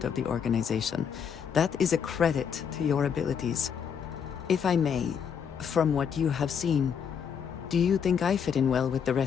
of the organization. That is a credit to your abilities. If I may, from what you have seen, do you think I fit in well with the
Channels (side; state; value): right; quieter; 7.3 dB